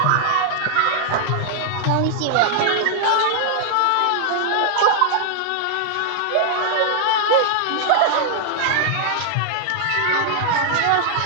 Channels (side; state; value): both; different; correlation -0.01